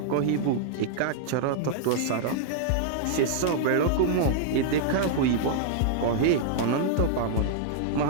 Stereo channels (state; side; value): different; both; correlation -0.01